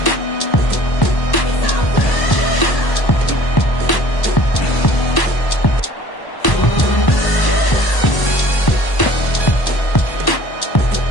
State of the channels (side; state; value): right; late; 1.1 ms